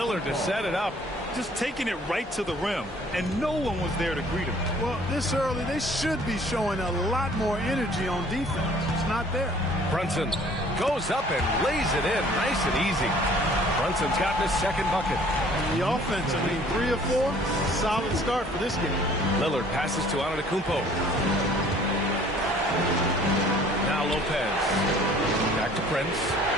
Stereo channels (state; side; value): normal; both; correlation 0.55